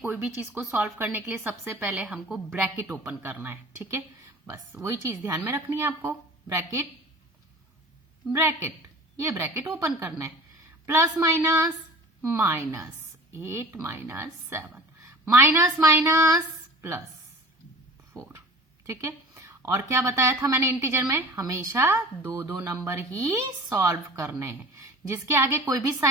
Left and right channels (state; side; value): normal; both; correlation 0.41